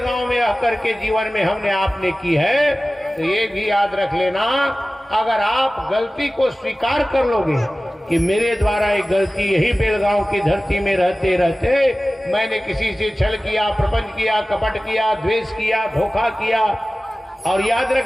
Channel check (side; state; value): both; normal; correlation 0.97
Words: में आकर के जीवन में हमने आपने की है तो ये भी याद रख लेना, अगर आप गलती को स्वीकार कर लोगे कि मेरे द्वारा एक गलती यही बेलगांव की धरती में रहते रहते मैंने किसी से छल किया, प्रपंच किया, कपट किया, द्वेष किया, धोखा किया, और याद